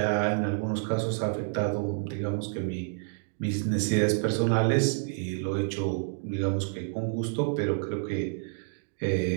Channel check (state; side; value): silent; left; digital silence